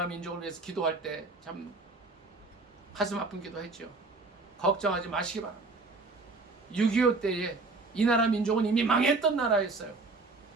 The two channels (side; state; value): left; quieter; 3.6 dB